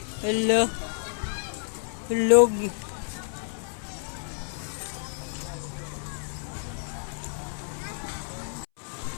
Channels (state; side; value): silent; right; 58 dB below the other